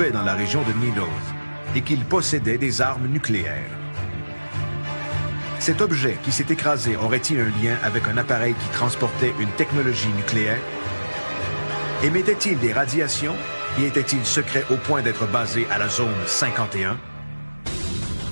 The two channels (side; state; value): both; inverted; correlation -1.00